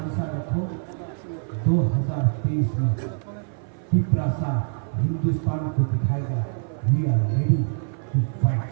रखो। 2023 में पिपरासा हिंदुस्तान को दिखाएगा we are ready to fight.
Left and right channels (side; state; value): left; silent; 57 dB below the other